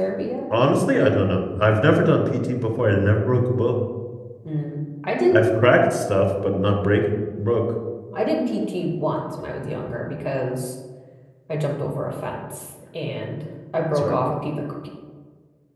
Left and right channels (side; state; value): both; identical; correlation 1.00